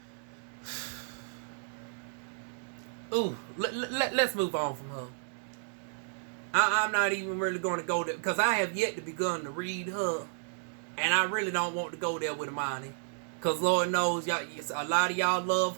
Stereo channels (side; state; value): left; silent; digital silence